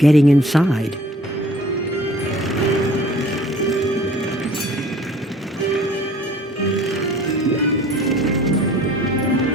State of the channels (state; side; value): normal; both; correlation 0.52